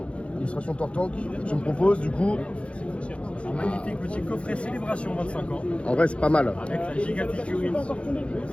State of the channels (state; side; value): late; right; 0.060 ms